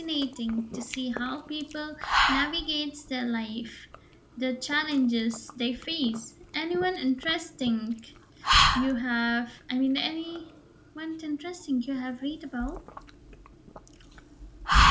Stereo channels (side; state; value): both; identical; correlation 1.00